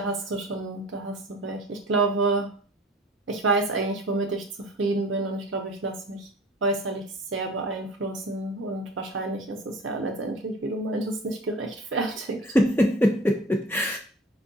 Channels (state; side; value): normal; both; correlation 0.42